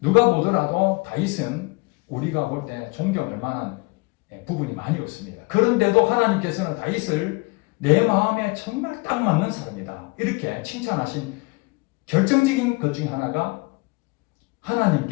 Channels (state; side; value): quieter; right; 27.0 dB